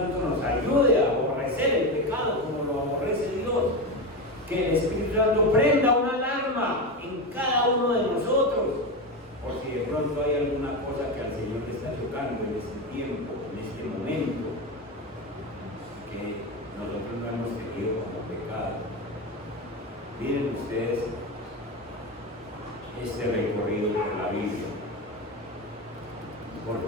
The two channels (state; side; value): normal; both; correlation 0.17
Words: nos ayude a aborrecer el pecado como lo aborrece Dios. Que el Espíritu Santo prenda una alarma en cada uno de nosotros, por si de pronto hay alguna cosa que al Señor le está tocando en este tiempo, en este momento, que nosotros no hemos tenido como pecado. Miren ustedes este recorrido por la Biblia. Por